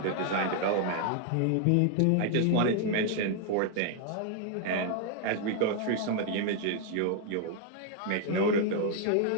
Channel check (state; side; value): different; both; correlation 0.00